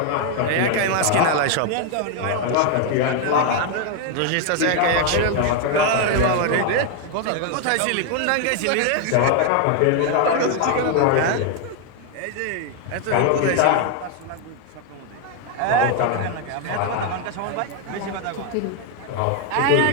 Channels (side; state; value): both; different; correlation 0.00